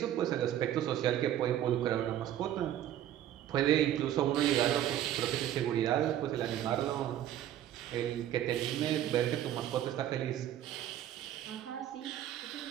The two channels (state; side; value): quieter; left; 11.7 dB